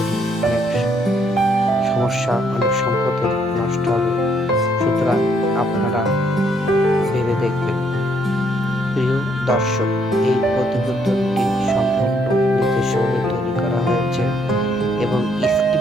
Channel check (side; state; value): both; normal; correlation 0.70